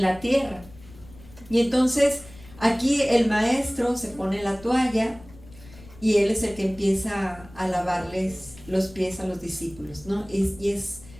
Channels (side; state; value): left; noise; rumble, 21 dB below the sound